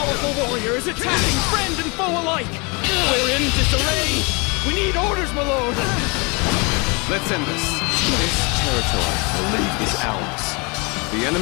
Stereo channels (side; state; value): right; quieter; 30.0 dB